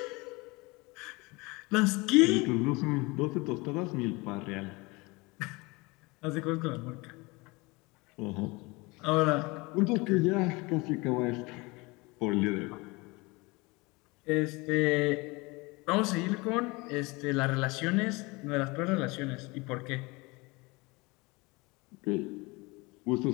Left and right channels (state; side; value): quieter; right; 24.9 dB